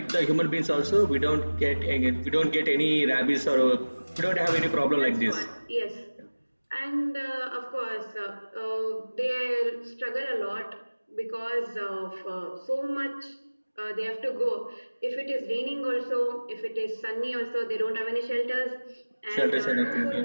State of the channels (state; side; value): inverted; both; correlation -1.00